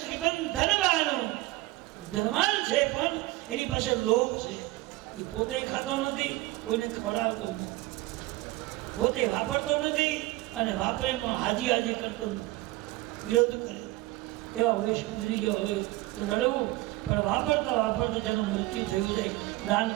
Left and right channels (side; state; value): left; quieter; 19.0 dB